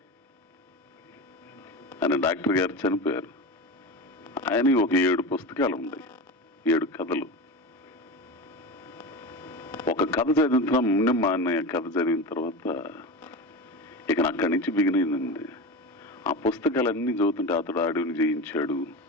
అని డాక్టర్ గారు చనిపోయారు. ఆయన ఒక 7 పుస్తకాలు ఉన్నాయి, 7 కథలు. ఒక కథ చదివిన ముందు మా అన్నయ్య కథ చదివిన తర్వాత ఇక అక్కడి నుంచి బిగినైందండి. ఆ పుస్తకాలన్నీ చదువుతుంటే అతడు అడవిని జయించాడు,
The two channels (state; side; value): normal; both; correlation 0.25